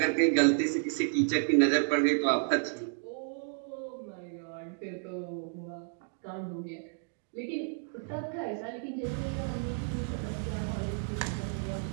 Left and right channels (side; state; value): left; silent; 57 dB below the other